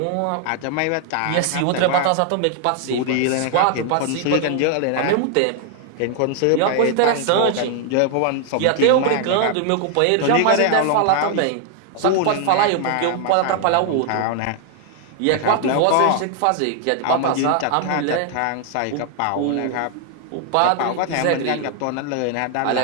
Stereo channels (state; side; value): different; both; correlation 0.00